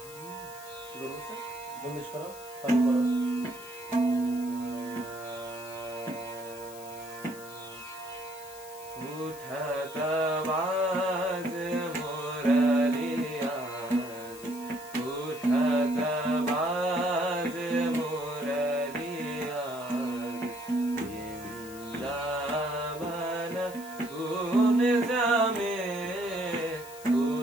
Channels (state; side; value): noise; left; hiss, 17 dB below the sound